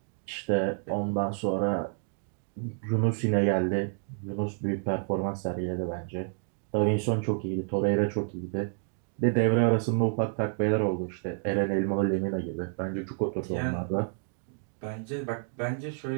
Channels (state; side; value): silent; left; 58 dB below the other